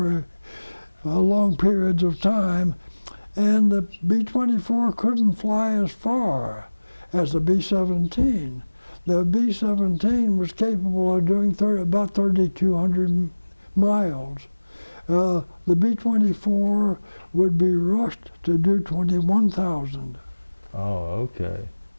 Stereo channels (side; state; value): both; inverted; correlation -1.00